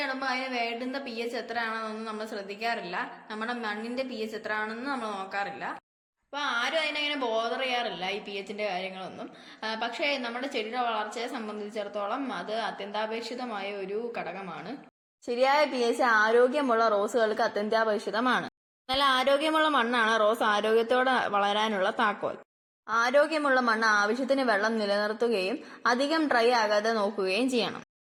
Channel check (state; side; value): identical; both; correlation 1.00